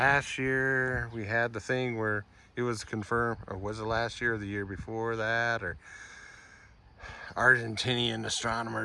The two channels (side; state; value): both; identical; correlation 1.00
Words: year we had the thing where it was confirmed, or was it last year or the year before that, or Argentinian